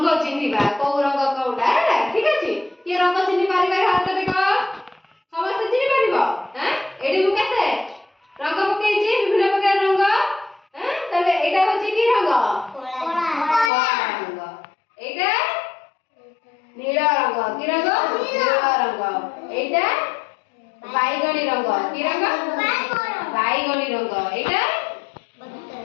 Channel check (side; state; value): right; drops out; at 13.7 s